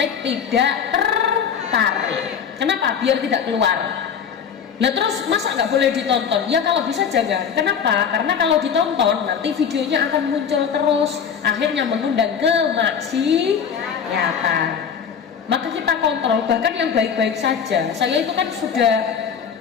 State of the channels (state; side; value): quieter; right; 7.2 dB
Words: tidak tertarik. Kenapa? Biar tidak keluar. Nah terus masa nggak boleh ditonton? Ya kalau bisa jangan. Kenapa? Karena kalau ditonton nanti videonya akan muncul terus, akhirnya mengundang kemaksiatan. Maka kita kontrol, bahkan yang baik-baik saja. Saya itu kan sudah